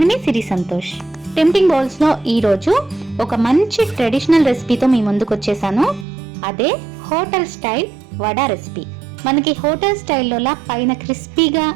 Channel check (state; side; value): drops out; left; at 6.1 s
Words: మీ సిరి సంతోష్. టెంప్టింగ్ బౌల్స్ లో ఈరోజు ఒక మంచి ట్రెడిషనల్ రెసిపీతో మీ ముందుకు వచ్చేసాను. అదే హోటల్ స్టైల్ వడా రెసిపీ. మనకి హోటల్ స్టైల్లోలా పైన క్రిస్పీగా